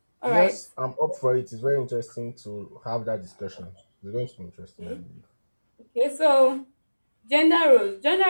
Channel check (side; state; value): both; inverted; correlation -1.00